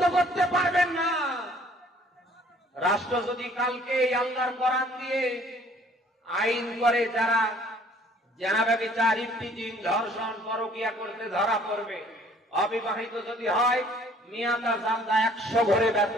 করতে পারবেন না। রাষ্ট্র যদি কালকে আল্লাহর কোরআন দিয়ে আইন করে যারা জেনা, ব্যভিচার, ইফটিজিং, ধর্ষণ, পরকীয়া করতে ধরা পড়বে, অবিবাহিত যদি হয় মিয়াটা জালদা 100 ঘরে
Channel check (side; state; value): both; normal; correlation 0.57